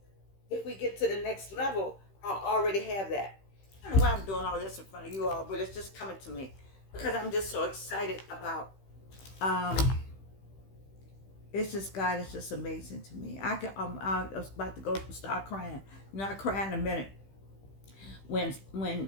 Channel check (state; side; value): late; right; 15 ms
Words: if we get to the next level, I'll already have that. I don't know why I'm doing all this in front of you all, but it's just coming to me because I'm just so excited about. Um, it's just God is just amazing to me. I was about to go start crying. Not crying in a minute. When